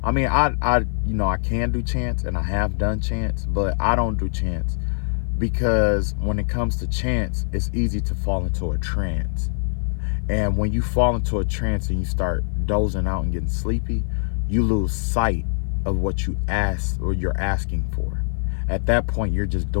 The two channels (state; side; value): silent; right; 55 dB below the other